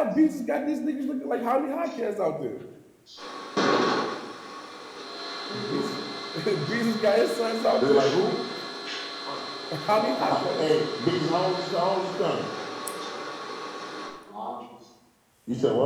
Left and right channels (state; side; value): identical; both; correlation 1.00